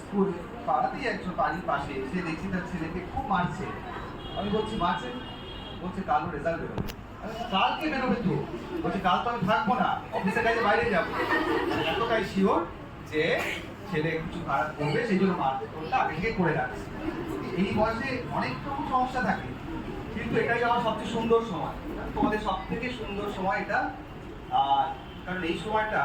পাড়াতেই একজন বাড়ির পাশে, সে দেখছি তার ছেলেকে খুব মারছে। আমি বলছি মারছে, বলছে কালও রেজাল্ট বেরোবে। কালকে বেরোবে তো? বলছে কাল তো আমি থাকবো না, অফিসের কাছে বাইরে যাবো। এতটাই শিওর যে ছেলে কিছু খারাপ করবে, সেই জন্য মারটা আগে থেকে করে রাখছে। এই বয়সে অনেক রকম সমস্যা থাকে, কিন্তু এটাই আমার সবচেয়ে সুন্দর সময়, তোমাদের সব থেকে সুন্দর সময় এটা। আর কারণ এই সময়টা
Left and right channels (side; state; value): both; identical; correlation 1.00